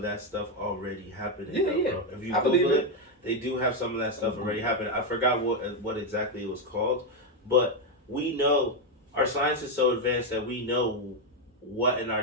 that stuff already happening. Yeah. Bro. If you Google it, they do have some of that stuff already happening. I forgot what exactly it was called, but. We know our science is so advanced that we know what in our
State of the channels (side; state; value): both; normal; correlation 0.04